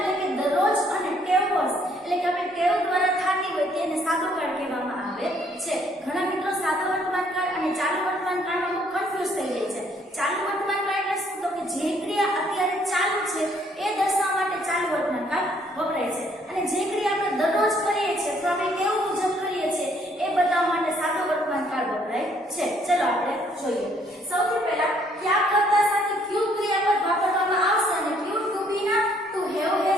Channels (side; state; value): both; normal; correlation 0.65